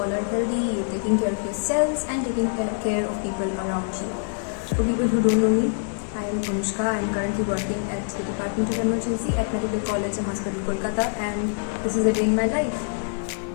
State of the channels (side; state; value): right; silent; digital silence